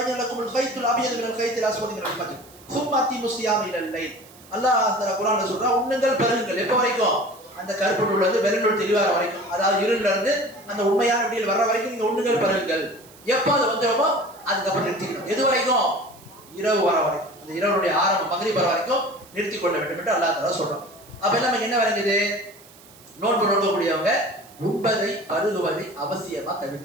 லக்குமுல் கைத்துல் அபியது மினல் கைத்தில் அஸ்வதி மினல் ஃபஜ்ர் சும்ம அத்திமு ஸியாம இலல் லைல். அல்லாஹ் குர்ஆன்ல சொல்றான், உண்ணுங்கள் பருகுங்கள். எப்போ வரைக்கும்? அந்த கருப்பு நூல் வெறுநூல் தெளிவார வரைக்கும், அதாவது இருள்ல இருந்து அந்த உண்மையான விடியல் வர்ற வரைக்கும் நீங்க உண்ணுங்கள் பருகுங்கள். எப்போ அது வந்துடுமோ அதுக்கப்புறம் நிறுத்திக்கணும். எது வரைக்கும்? இரவு வர வரைக்கும், அந்த இரவுடைய ஆரம்பம் மக்ரிப் வர வரைக்கும் நிறுத்தி கொள்ள வேண்டும் என்று அல்லாஹ் தஆலா சொல்றான். அப்ப நமக்கு என்ன விளங்குது? நோன்பு நோக்கக்கூடியவங்க உண்பதை பருகுவதை அவசியமா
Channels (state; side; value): noise; right; hiss, 23 dB below the sound